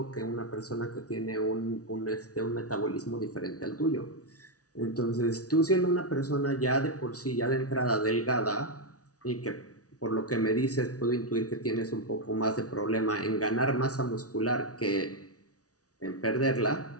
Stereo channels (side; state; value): right; late; 0.67 ms